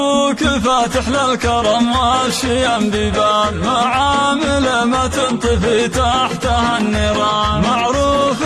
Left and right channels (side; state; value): both; identical; correlation 1.00